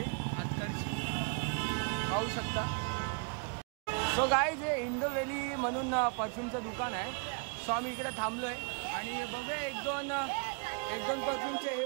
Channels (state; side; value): quieter; left; 37.4 dB